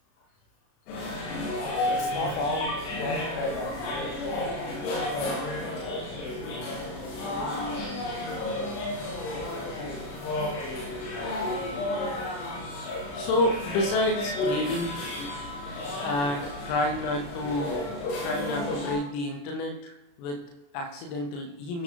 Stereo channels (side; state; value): right; late; 35 ms